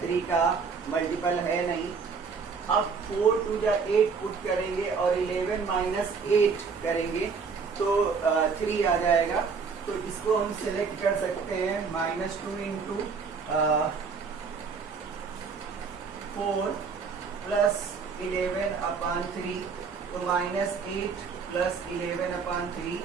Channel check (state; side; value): quieter; left; 5.3 dB